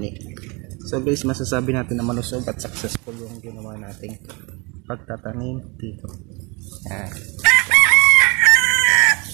So guys, masasabi natin na malusog at successful yung ginawa nating pagtatanim dito.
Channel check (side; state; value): left; quieter; 29.1 dB